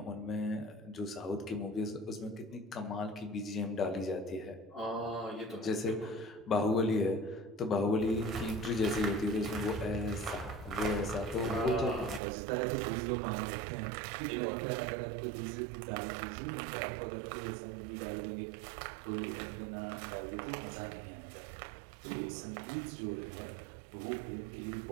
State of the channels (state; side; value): drops out; left; at 12.2 s